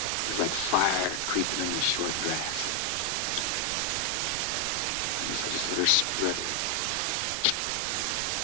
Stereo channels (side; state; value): both; different; correlation 0.00